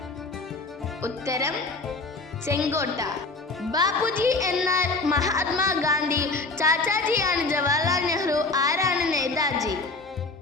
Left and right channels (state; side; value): quieter; right; 3.5 dB